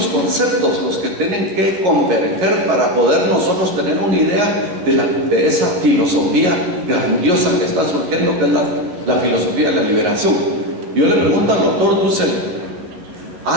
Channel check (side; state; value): left; late; 11 ms